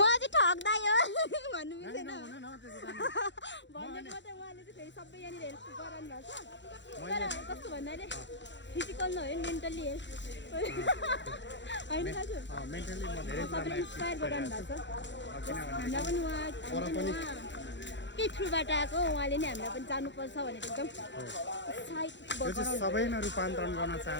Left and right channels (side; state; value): right; late; 0.52 ms